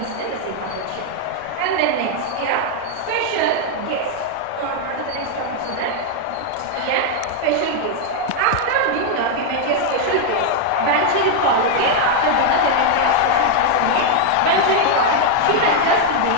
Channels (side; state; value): both; different; correlation 0.00